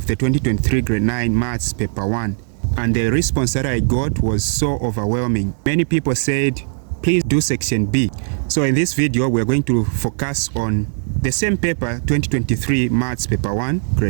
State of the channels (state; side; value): silent; left; digital silence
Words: the 2023 grade 9 maths paper 1, and the response that I got was so overwhelming. Many people said, please do section B. So in this video, we're going to focus on the same paper, 2023 maths paper 1